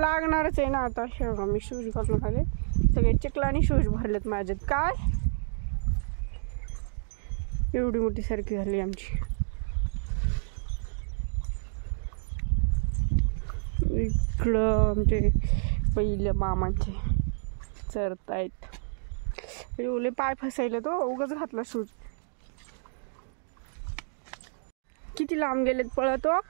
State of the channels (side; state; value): left; silent; digital silence